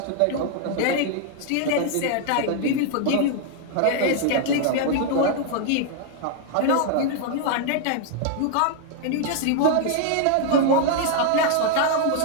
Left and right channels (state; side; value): different; both; correlation 0.00